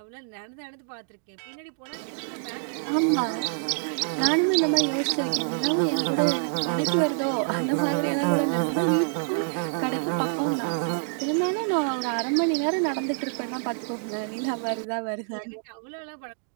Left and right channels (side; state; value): left; silent; digital silence